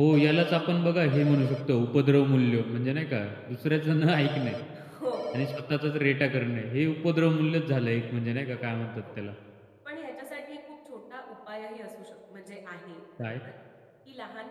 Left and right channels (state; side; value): identical; both; correlation 1.00